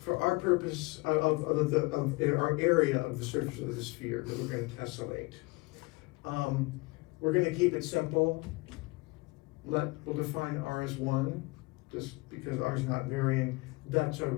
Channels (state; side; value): quieter; right; 24.5 dB